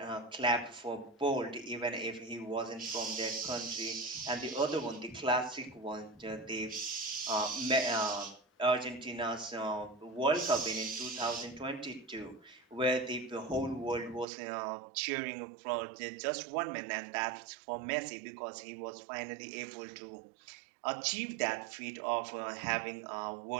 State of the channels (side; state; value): left; drops out; at 14.2 s